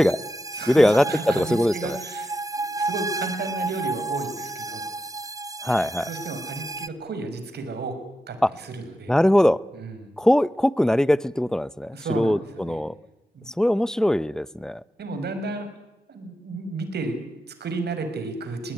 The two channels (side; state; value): both; normal; correlation 0.89